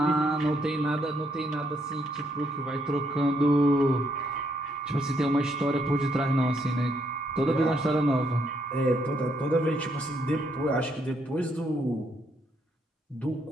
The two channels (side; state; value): both; normal; correlation 0.73